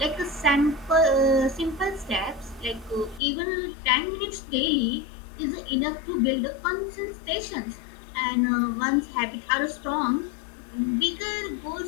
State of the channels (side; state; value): right; drops out; at 3.2 s